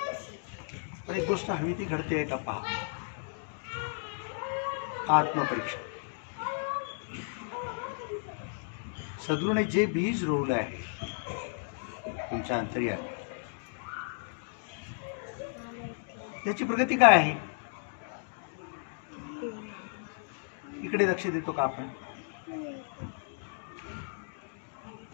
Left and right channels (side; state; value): right; silent; digital silence